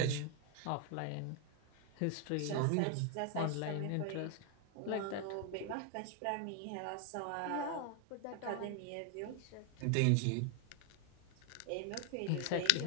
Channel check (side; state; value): both; different; correlation 0.01